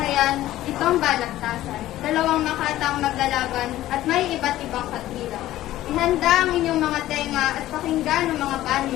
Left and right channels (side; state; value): right; quieter; 14.6 dB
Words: itong balagtasan. Dalawang makataong maglalaban at may iba't ibang katwiran. Ihanda ang inyong mga tenga at pakinggan ang mga panig